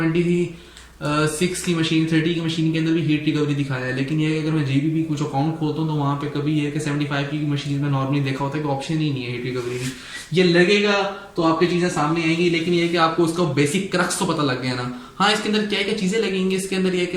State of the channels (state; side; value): identical; both; correlation 1.00